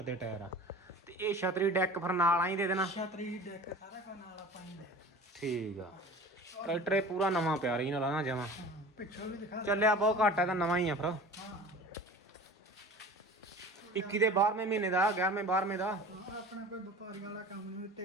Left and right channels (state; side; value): normal; both; correlation 0.40